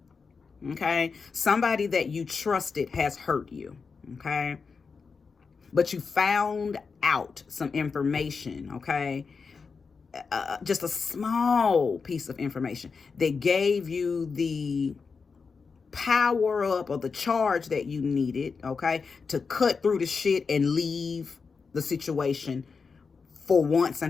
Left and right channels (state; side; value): quieter; right; 5.1 dB